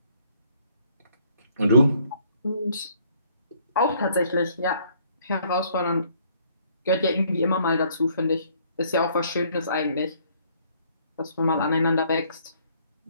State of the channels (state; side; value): inverted; both; correlation -0.64